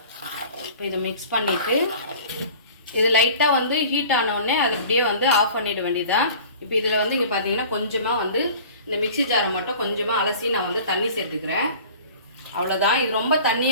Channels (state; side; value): inverted; both; correlation -0.44